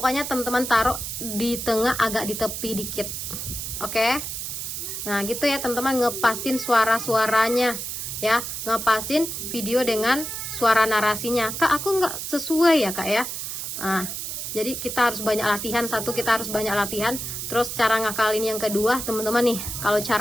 teman-teman taruh di tengah agak di tepi dikit. Oke? Nah, gitu ya teman-teman, ngepasin suara-suaranya. Ya, ngepasin video dengan suara narasinya. Kak, aku nggak sesuai ya Kak ya. Nah, jadi kita harus banyak latihan. Satu, kita harus banyak latihan. Terus cara ngakalin yang kedua, teman-teman nih. Kalau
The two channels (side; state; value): right; noise; hiss, 5 dB below the sound